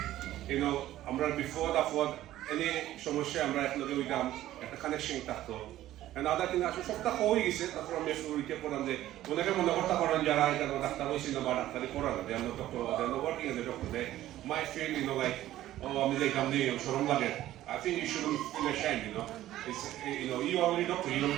you know. Amra before that, any সমস্যা আমরা একলগে হইতাম একটা connection থাকতো and other thing আসলে সবটা হয়ে গেছে তারপর আমি শুরুতে পড়লাম যে অনেকে মনে করতে পারেন যারা এটা ডাক্তার হয়েছিল বা ডাক্তারি পড়া না then doctor then working as a doctor they may feel you know like আমি যে কাম দিয়ে শরম লাগে I think you shouldn't feel ashamed, you know. It's, you know, you already doctor, you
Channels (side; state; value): left; quieter; 14.0 dB